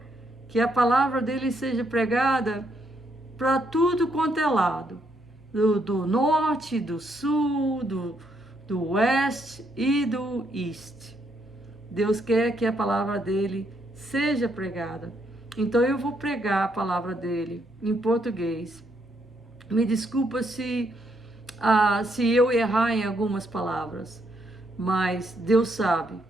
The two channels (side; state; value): both; normal; correlation 0.75